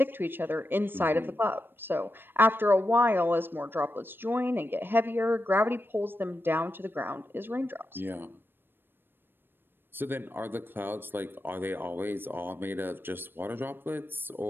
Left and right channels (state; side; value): late; left; 0.098 ms